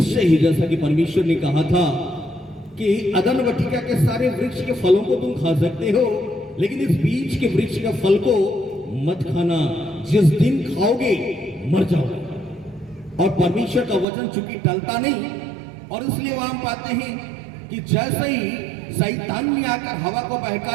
ही, जैसा कि परमेश्वर ने कहा था कि अदन वाटिका के सारे वृक्ष के फलों को तुम खा सकते हो, लेकिन इस बीज के वृक्ष का फल को मत खाना, जिस दिन खाओगे मर जाओगे। और परमेश्वर का वचन चूंकि टलता नहीं, और इसलिए वहां हम पाते हैं कि जैसे ही शैतान ने आकर हवा को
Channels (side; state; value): left; drops out; at 14.1 s